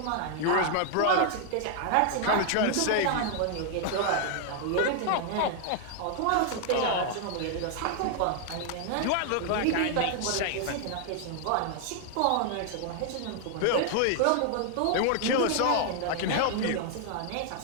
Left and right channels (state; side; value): different; both; correlation 0.00